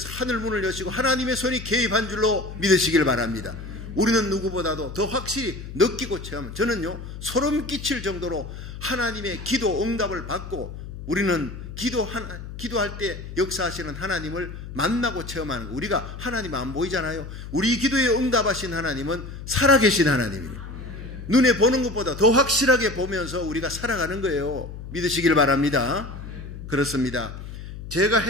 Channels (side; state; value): left; noise; hum, 11 dB below the sound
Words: 하늘문을 여시고 하나님의 손이 개입한 줄로 믿으시길 바랍니다. 우리는 누구보다도 더 확실히 느끼고 체험한, 저는요 소름 끼칠 정도로 하나님의 기도 응답을 받고 우리는 기도할 때 역사하시는 하나님을 만나고 체험하는 거. 우리가 하나님 안 보이잖아요. 우리 기도에 응답하신 하나님은 살아계신 하나님입니다. 눈에 보는 것보다 더 확실하게 보면서 우리가 살아가는 거예요. 믿으시길 바랍니다. 그렇습니다. 제가